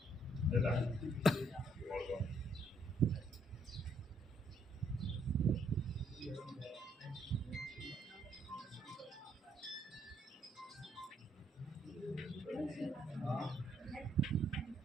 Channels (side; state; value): both; normal; correlation 0.70